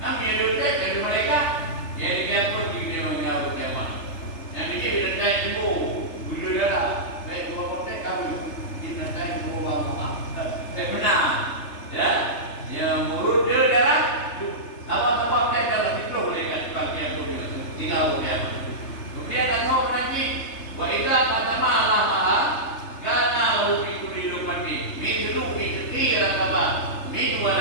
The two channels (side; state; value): right; late; 3.3 ms